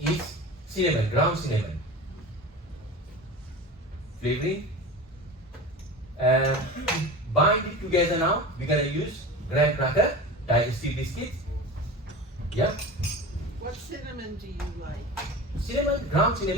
cinnamon, ground cinnamon. Flavoring. Bind it together now, we're gonna use graham cracker, digestive biscuits. Yeah? What cinnamon do you like? Cinnamon, ground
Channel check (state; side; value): normal; both; correlation 0.32